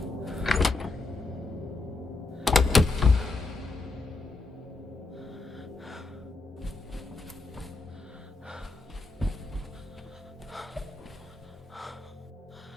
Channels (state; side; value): quieter; right; 3.4 dB